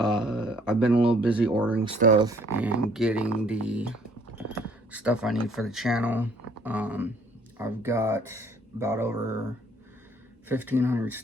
I've been a little busy ordering stuff and getting the stuff I need for the channel. I've got about over 1,500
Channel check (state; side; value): normal; both; correlation 0.61